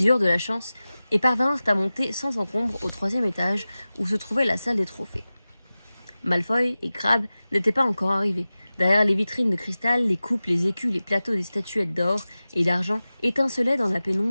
eurent de la chance et parvinrent à monter sans encombre au 3e étage où se trouvait la salle des trophées. Malfoy et Crabbe n'étaient pas encore arrivés. Derrière les vitrines de cristal, les coupes, les écus, les plateaux des statuettes d'or et d'argent étincelaient dans la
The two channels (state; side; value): inverted; both; correlation -0.96